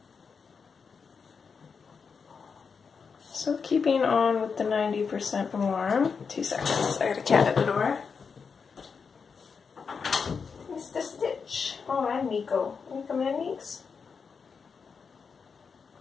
So keeping on with the 90% warm. 2 seconds, I got a cat at the door. Mr. Stitch. Oh, and Nico. Can you come in, Neeks?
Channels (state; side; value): quieter; right; 5.6 dB